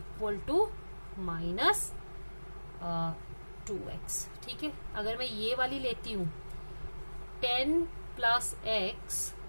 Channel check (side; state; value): both; inverted; correlation -1.00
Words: to minus 2x, ठीक है। अगर मैं ये वाली लेती हूं 10 plus x